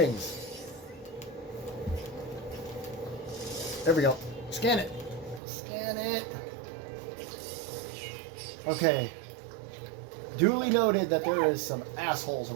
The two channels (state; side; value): drops out; left; at 5.4 s